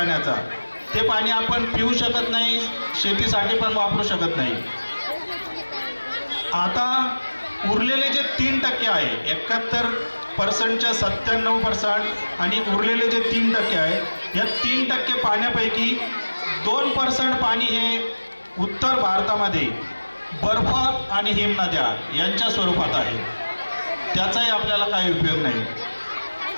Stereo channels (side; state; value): both; inverted; correlation -1.00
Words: ते पाणी आपण पिऊ शकत नाही, शेतीसाठी पण वापरू शकत नाही. आता उरलेले जे 3% आहे, 71%च्या 97% आणि उरलेले जे 3% आहे, या 3% पाण्यापैकी 2% पाणी हे उत्तर भारतामध्ये बर्फ आणि हिमनद्या यांच्या स्वरूपात आहे, त्याचाही आपल्याला काही उपयोग नाही.